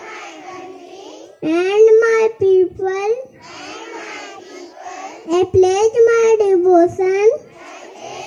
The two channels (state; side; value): identical; both; correlation 1.00